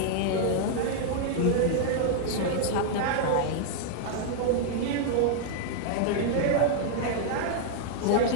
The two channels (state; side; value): different; both; correlation -0.01